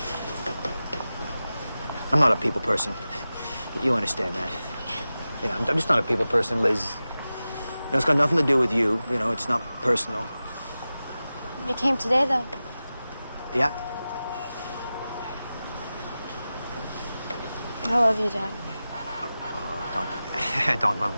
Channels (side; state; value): both; inverted; correlation -0.95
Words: I'm not a people person. You understand that. You know, I'm just not a people person, Liz. You know, it's got nothing to do with you. You know, it's not personal. You came today, though. Yeah. I love you, Dad. Don't love